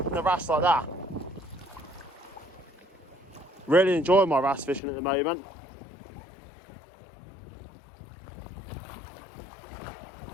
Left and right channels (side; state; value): right; drops out; at 4.8 s